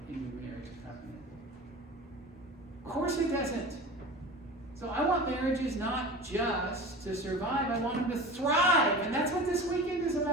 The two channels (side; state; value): both; normal; correlation 0.34